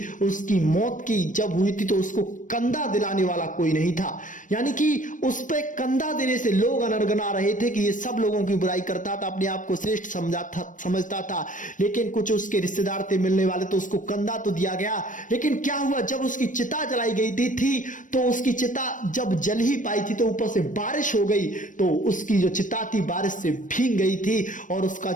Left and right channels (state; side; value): late; right; 0.38 ms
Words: उसकी मौत की जब हुई थी तो उसको कंधा दिलाने वाला कोई नहीं था, यानी कि उस पे कंधा देने से लोग अनरगना रहे थे कि ये सब लोगों की बुराई करता था, अपने आप को श्रेष्ठ समझता था। लेकिन कुछ उसके रिश्तेदार थे मिलने वाले, तो उसको कंधा तो दिया गया। लेकिन क्या हुआ, जब उसकी चिता जलाई गई थी तो उसकी चिता जब जल ही पाई थी तो ऊपर से बारिश हो गई, तो उसकी जो चिता थी बारिश से भीग गई थी और उसका